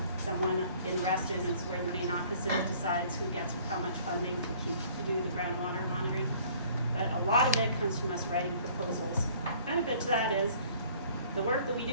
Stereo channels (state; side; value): inverted; both; correlation -0.56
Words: someone in Reston is where the main office is, decides who gets how much funding to do the groundwater monitoring. But a lot of it comes from us writing proposals. Benefit to that is the work that we